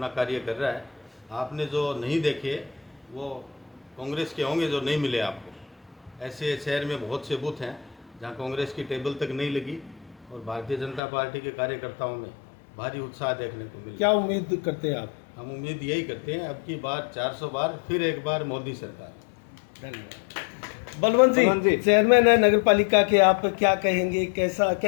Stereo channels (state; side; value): drops out; right; at 11.0 s